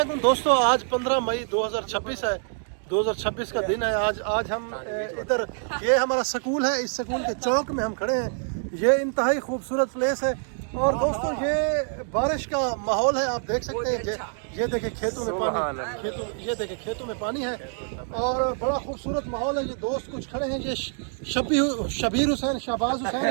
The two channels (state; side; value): silent; left; 61 dB below the other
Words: दोस्तों, आज 15 मई 2026 है। 2026 का दिन है आज हम इधर, ये हमारा स्कूल है, इस स्कूल के चौक में हम खड़े हैं। ये इंतहाई खूबसूरत प्लेस है और दोस्तों ये बारिश का माहौल है, आप देख सकते हैं। ये देखे खेतों में पानी, ये देखे खेतों में पानी है और बड़ा खूबसूरत माहौल है। ये दोस्त कुछ खड़े हैं, ये शबीर हुसैन, शहबाज हुसैन